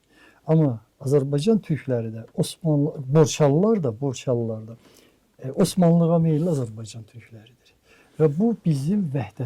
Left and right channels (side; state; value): both; identical; correlation 1.00